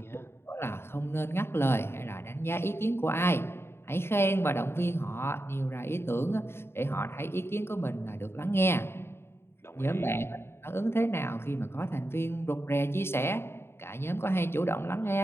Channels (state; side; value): late; right; 0.12 ms